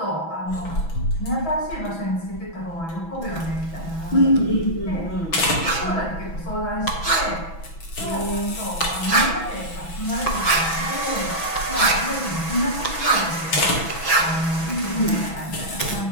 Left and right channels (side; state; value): right; late; 6.1 ms